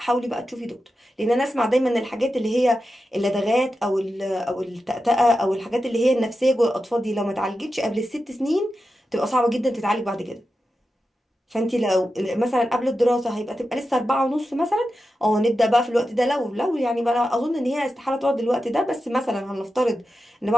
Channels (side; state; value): both; normal; correlation 0.91